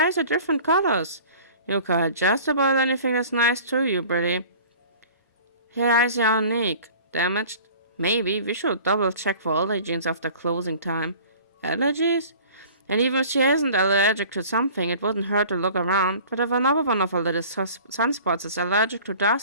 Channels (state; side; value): inverted; both; correlation -0.45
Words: are different colors. You call just about anything that's nice to you, Britty. Her eyes are unique. Damaged? Maybe. We should double check for allergens after closing time. Allergies? And even if she isn't allergic to something, it wouldn't hurt to look around. But if another one of her little sunspots is allergic to